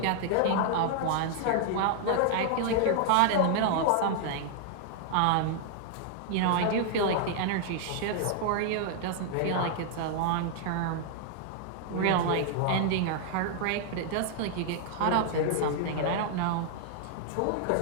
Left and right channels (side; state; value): both; different; correlation 0.00